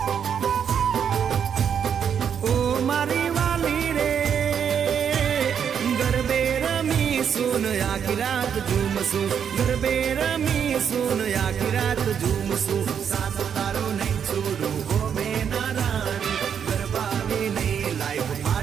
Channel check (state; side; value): quieter; left; 7.9 dB